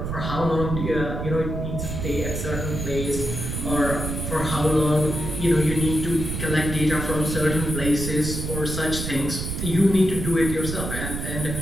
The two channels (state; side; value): noise; right; rumble, 4 dB below the sound